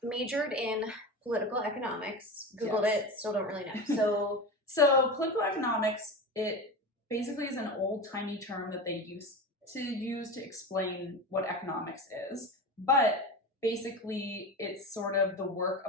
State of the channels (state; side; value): normal; both; correlation 0.26